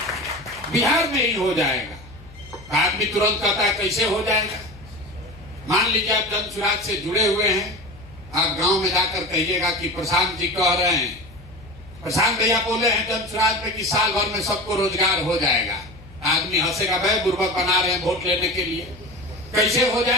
बिहार में ही हो जाएगा। आदमी तुरंत कहता है कैसे हो जाएगा? मान लीजिए आप जन सुराज से जुड़े हुए हैं, आप गांव में जाकर कहिएगा कि प्रशांत जी कह रहे हैं, प्रशांत भैया बोले हैं जन सुराज में कि साल भर में सबको रोजगार हो जाएगा। आदमी हंसेगा, भाई बुर्बक बना रहे हैं वोट लेने के लिए। कैसे हो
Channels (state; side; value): noise; left; hum, 21 dB below the sound